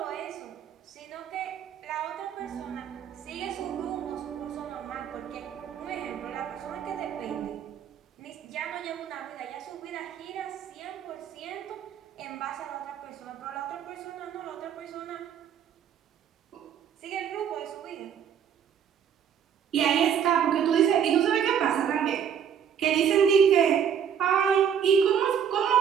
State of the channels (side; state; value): left; quieter; 8.3 dB